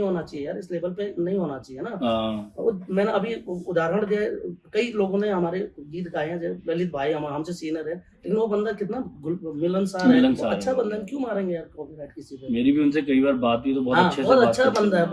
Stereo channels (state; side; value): identical; both; correlation 1.00